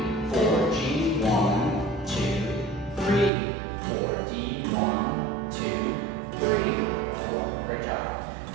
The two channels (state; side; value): drops out; left; at 3.3 s